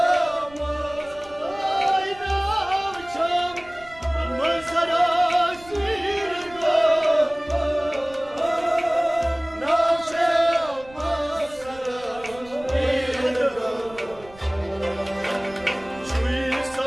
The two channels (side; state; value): right; noise; rumble, 22 dB below the sound